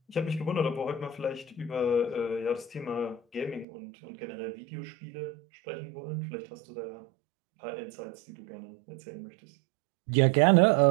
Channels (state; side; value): drops out; left; at 3.7 s